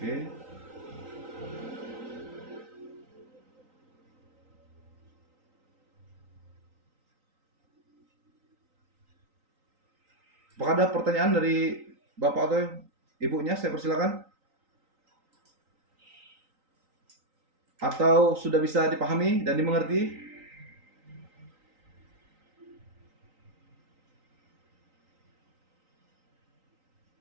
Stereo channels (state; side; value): late; left; 3.9 ms